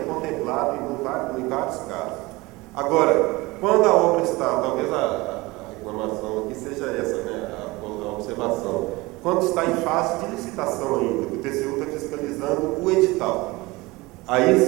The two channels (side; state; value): left; quieter; 22.1 dB